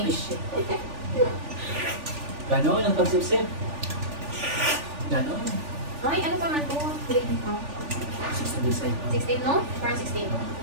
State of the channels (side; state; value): left; late; 3.4 ms